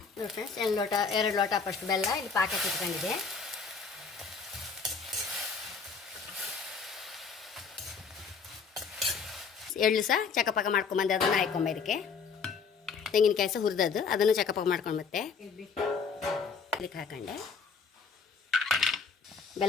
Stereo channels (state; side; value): quieter; right; 5.5 dB